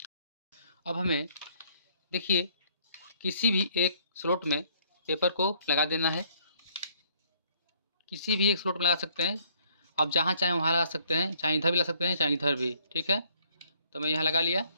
अब हमें देखिए किसी भी एक स्लॉट में पेपर को लगा देना है। किसी भी एक स्लॉट में लगा सकते हैं आप, जहाँ चाहें वहाँ लगा सकते हैं, चाहे इधर भी लगा सकते हैं चाहे इधर भी। ठीक है, तो मैं यहाँ लगा लिया।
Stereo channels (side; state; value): both; inverted; correlation -0.64